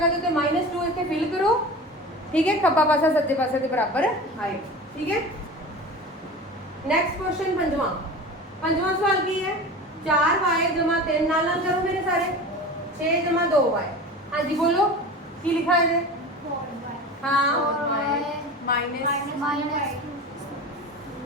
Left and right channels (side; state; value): both; normal; correlation 0.33